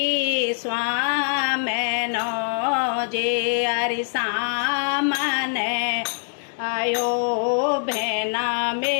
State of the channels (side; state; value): right; silent; digital silence